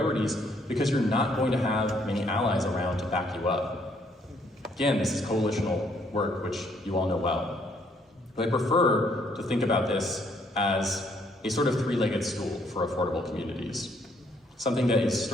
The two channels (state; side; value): normal; both; correlation 0.68